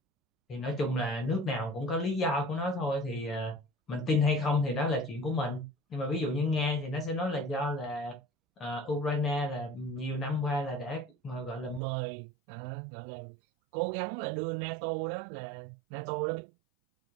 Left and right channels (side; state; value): left; drops out; at 11.8 s